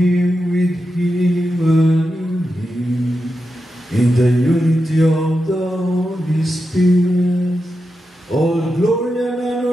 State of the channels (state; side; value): normal; both; correlation 0.89